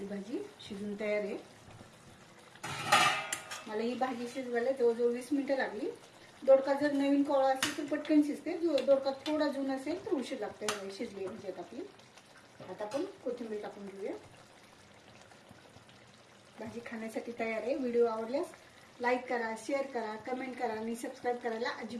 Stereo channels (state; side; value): identical; both; correlation 1.00